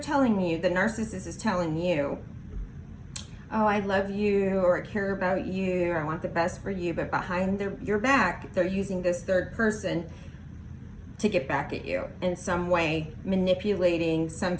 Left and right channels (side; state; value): both; identical; correlation 1.00